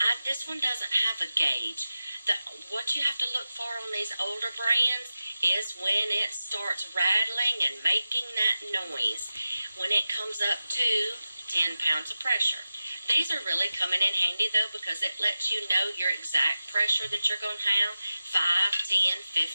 this one doesn't have a gauge. What you have to look for on these older brands is when it starts rattling and making that noise. When it comes up to 10 pounds of pressure. These are really coming in handy, though, because it lets you know your exact pressure that you're going to have, 5, 10,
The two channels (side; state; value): both; inverted; correlation -0.93